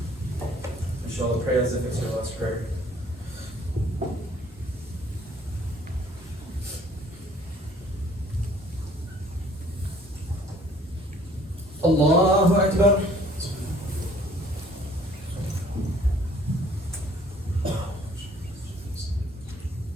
Inshallah, pray as if it's your last prayer. Allahu Akbar.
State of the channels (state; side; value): normal; both; correlation 0.57